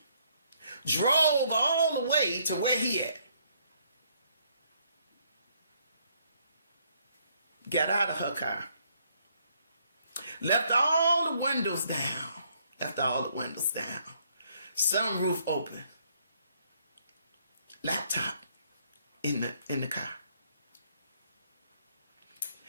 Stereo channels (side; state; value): both; inverted; correlation -0.68